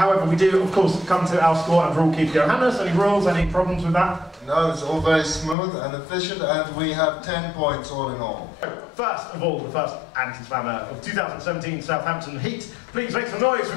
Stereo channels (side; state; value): right; drops out; at 5.6 s